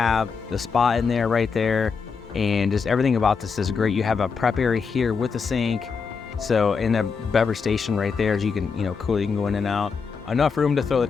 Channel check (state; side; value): quieter; right; 5.5 dB